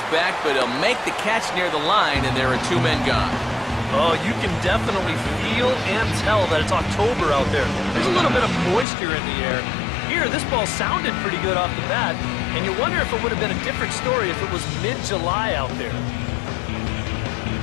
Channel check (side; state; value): right; drops out; at 8.8 s